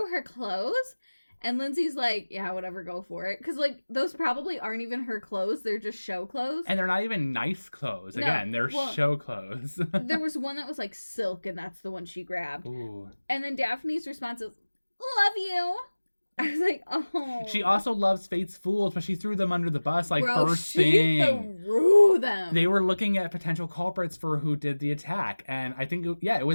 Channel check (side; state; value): both; inverted; correlation -1.00